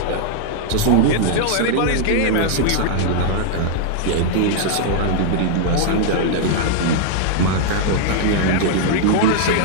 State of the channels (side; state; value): both; different; correlation -0.01